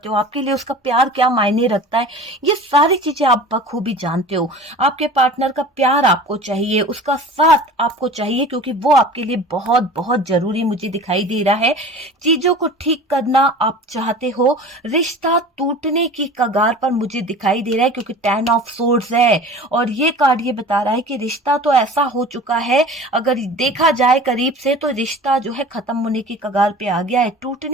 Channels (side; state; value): both; normal; correlation 0.39